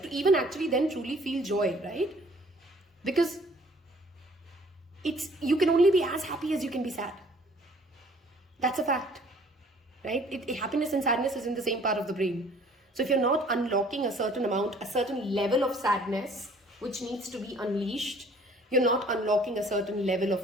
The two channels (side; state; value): both; normal; correlation 0.56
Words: to even actually then truly feel joy, right? Because you can only be as happy as you can be sad. That's a fact, right? Happiness and sadness is in the same part of the brain. So if you're not unlocking a certain level of sadness, which needs to be unleashed, you're not unlocking a certain level